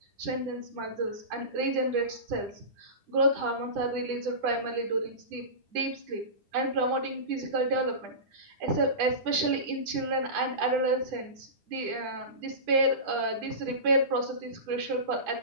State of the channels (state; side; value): late; left; 9.9 ms